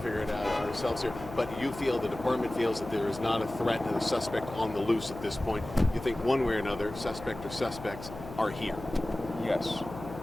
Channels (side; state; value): left; noise; hum, 13 dB below the sound